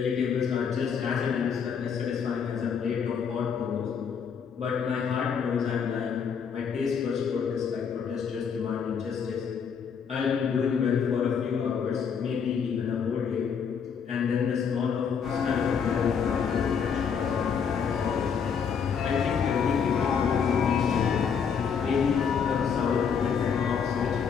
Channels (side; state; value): right; quieter; 6.8 dB